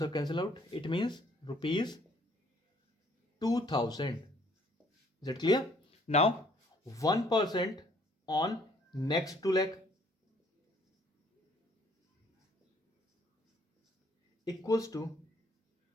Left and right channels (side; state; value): both; normal; correlation 0.61